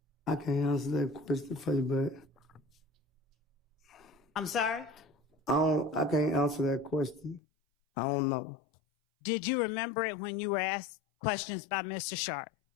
I can't answer that question for you, but I'm sorry? I can't answer that question. I don't know. Did you remember it when you were asked questions by Mr. Sharp?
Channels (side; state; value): right; drops out; at 7.4 s